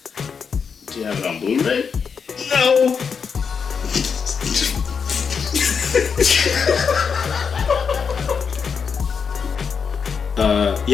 Do you have it on Blu-ray? No!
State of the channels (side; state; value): right; quieter; 6.1 dB